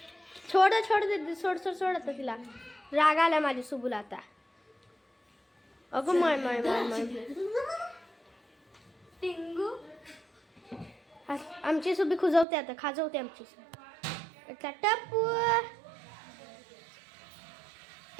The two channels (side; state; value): left; drops out; at 12.5 s